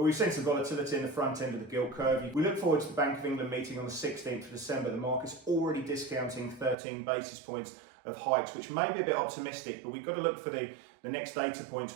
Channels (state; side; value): drops out; left; at 6.8 s